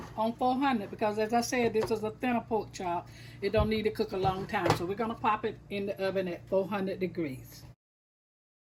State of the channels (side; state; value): both; identical; correlation 1.00